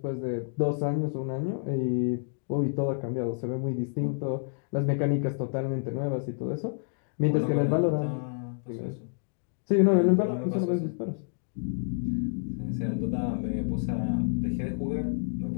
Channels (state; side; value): silent; right; digital silence